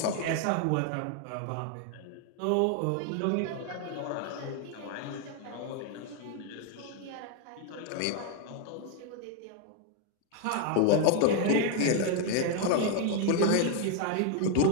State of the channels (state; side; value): different; both; correlation 0.00